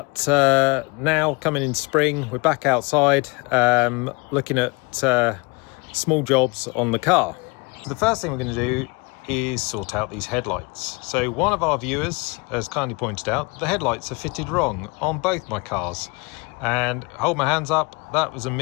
now coming into spring, we're back outside looking at small jobs on the car. The first thing we're going to do is sort out these headlights. So one of our viewers has kindly pointed out the headlights are fitted wrong on both my cars, and hold my hands up, that was a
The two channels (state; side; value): quieter; right; 28.2 dB